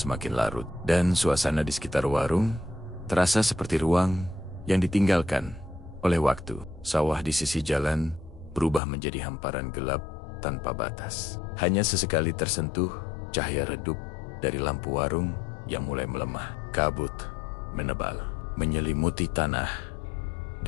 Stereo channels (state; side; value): drops out; right; at 8.8 s